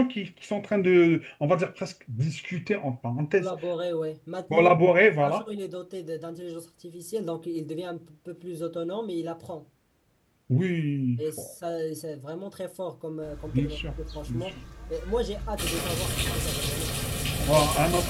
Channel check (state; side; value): identical; both; correlation 1.00